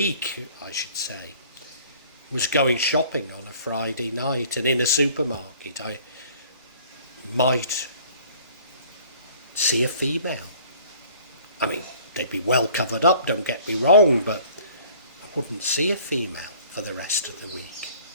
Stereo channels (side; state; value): both; inverted; correlation -0.52